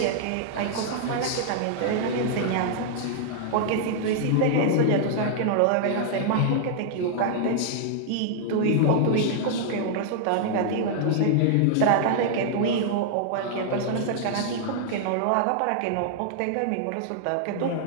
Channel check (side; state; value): both; different; correlation -0.01